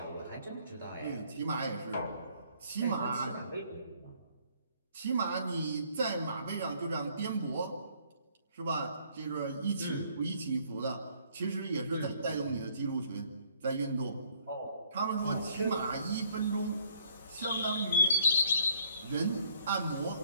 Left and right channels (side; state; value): both; inverted; correlation -0.63